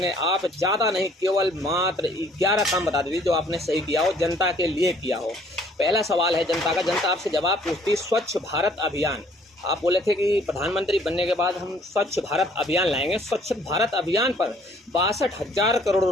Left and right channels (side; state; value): both; normal; correlation 0.59